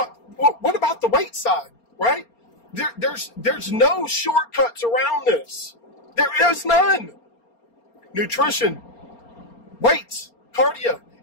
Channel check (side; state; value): right; late; 4.3 ms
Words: about the weight side, right? There's no shortcuts around this. There is none. Nutrition, weights, cardio.